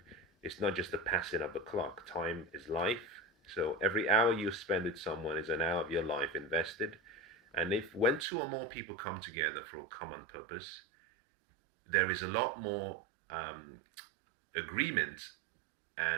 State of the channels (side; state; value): left; drops out; at 8.2 s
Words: is not just the passing of the clock. Time is life. So every hour you spend with someone is an hour of your life invested. And if when two or more people come together for a common purpose, there is a lot more agreement